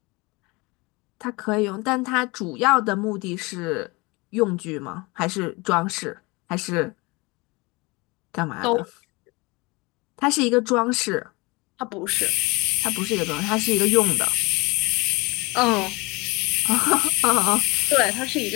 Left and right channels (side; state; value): right; quieter; 25.3 dB